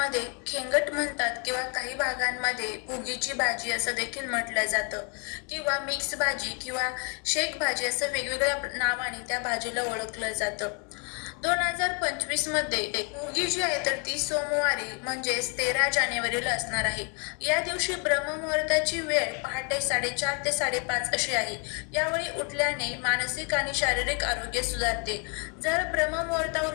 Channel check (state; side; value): quieter; right; 36.7 dB